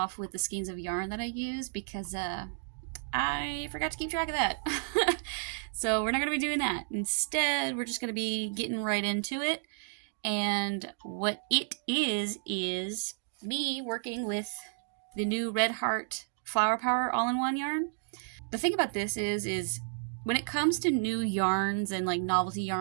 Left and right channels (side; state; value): left; silent; digital silence